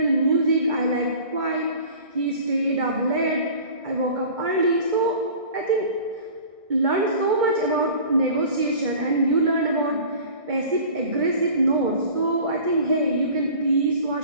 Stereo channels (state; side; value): late; left; 1.6 ms